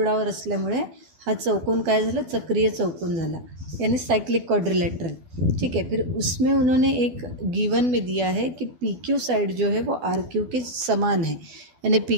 असल्यामुळे हा चौकोन काय झाला, चक्रीय चौकोन झाला, यानी साइक्लिक क्वाड्रिलेटरल। ठीक है, फिर उसमें उन्होंने एक गिवन में दिया है कि PQ साइड जो है वो RQ के समान है, यानी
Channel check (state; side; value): late; left; 12 ms